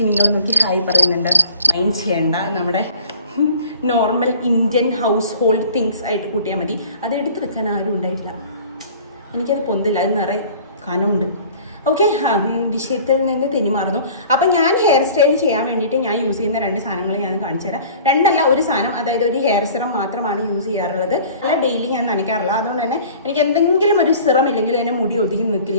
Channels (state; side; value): inverted; both; correlation -0.46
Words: നോക്കി ഹായ് പറയുന്നുണ്ട്, മൈൻഡ് ചെയ്യേണ്ട. നമ്മുടെ normal Indian house hold things ആയിട്ട് കൂട്ടിയാൽ മതി. അത് എടുത്ത് വെക്കാൻ ആരും ഉണ്ടായിട്ടില്ല. എനിക്കത് പൊന്തില്ല, അത് നിറയെ കനമുണ്ട്. ഓക്കെ, വിഷയത്തിൽ നിന്ന് തെന്നിമാറുന്നു. അപ്പം ഞാൻ ഹെയർ സ്റ്റൈൽ ചെയ്യാൻ വേണ്ടിയിട്ട് ഞാൻ യൂസ് ചെയ്യുന്ന 2 സാധനങ്ങൾ ഞാൻ കാണിച്ചു തരാം. 2 അല്ല, ഒരു സാധനം, അതായത് ഒരു ഹെയർ സിറം മാത്രമാണ് യൂസ് ചെയ്യാറുള്ളത്. അല്ല, ഡെയിലി ഞാൻ നനയ്ക്കാറില്ല. അതുകൊണ്ട് തന്നെ എനിക്ക് എന്തെങ്കിലും ഒരു സിറം ഇല്ലെങ്കിൽ അതിന് മുടി ഒതുങ്ങി